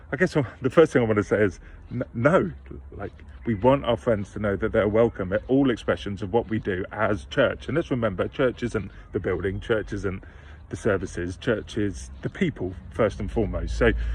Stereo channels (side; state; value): both; identical; correlation 1.00